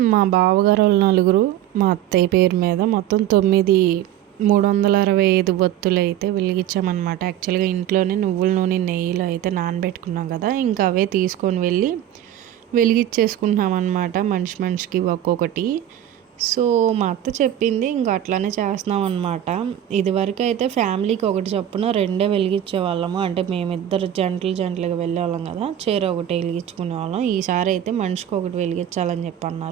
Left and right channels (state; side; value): quieter; left; 11.5 dB